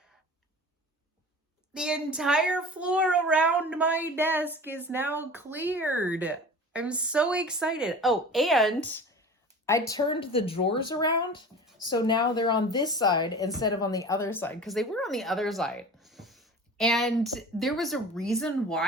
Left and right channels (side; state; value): both; normal; correlation 0.38